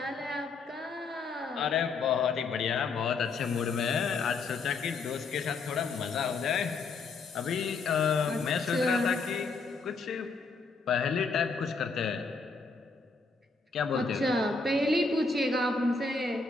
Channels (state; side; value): quieter; right; 4.2 dB